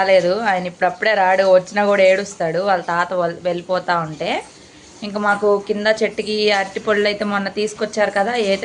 ఆయన ఇప్పుడప్పుడే రాడు, వచ్చినా కూడా ఏడుస్తాడు వాళ్ళ తాత వెళ్ళిపోతూ ఉంటే. ఇంకా మాకు కింద చెట్టుకి అరటిపళ్ళు అయితే మొన్న తీసుకొచ్చారు కదా,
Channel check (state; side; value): identical; both; correlation 1.00